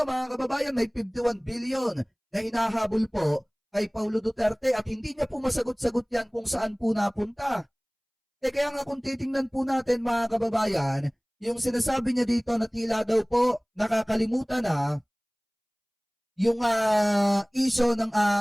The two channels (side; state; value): both; identical; correlation 1.00